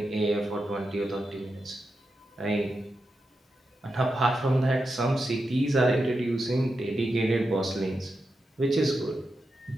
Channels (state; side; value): normal; both; correlation 0.88